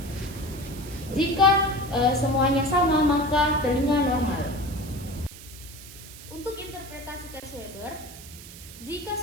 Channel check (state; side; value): noise; right; hiss, 16 dB below the sound